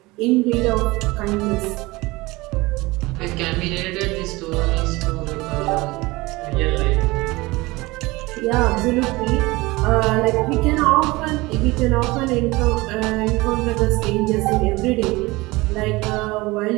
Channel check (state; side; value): quieter; left; 21.7 dB